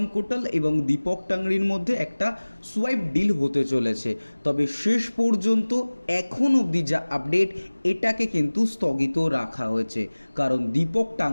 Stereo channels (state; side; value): inverted; both; correlation -1.00